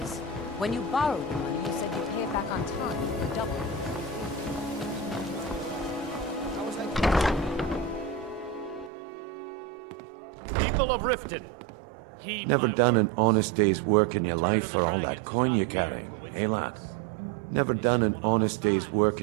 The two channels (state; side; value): drops out; left; at 8.9 s